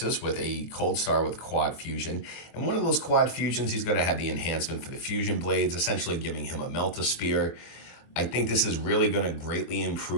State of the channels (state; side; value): late; right; 24 ms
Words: with a Cold Star with quad fusion. And one of those quad fusions, he's going to have the enhancement for the fusion blades, essentially giving him a Melt-A-Spear. I think this is really going to greatly